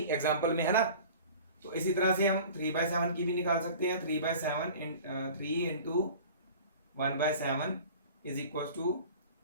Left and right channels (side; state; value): both; inverted; correlation -0.42